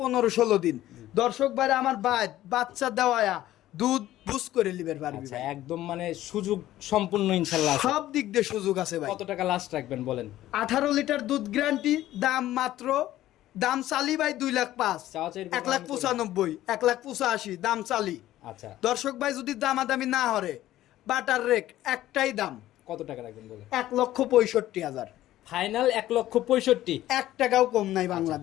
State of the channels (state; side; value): quieter; right; 14.3 dB